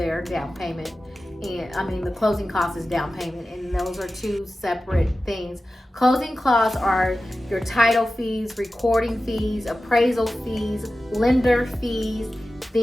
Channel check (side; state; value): both; normal; correlation 0.94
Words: down payment. And I mean, the closing cost is down payment, and those are two separate things. Closing costs are your title fees, recording fees, appraisal fees, lender fees,